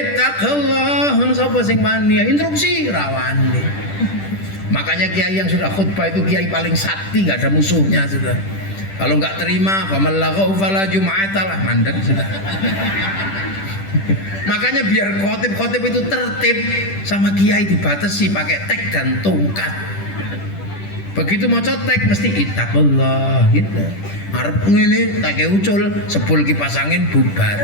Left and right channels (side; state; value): right; late; 10 ms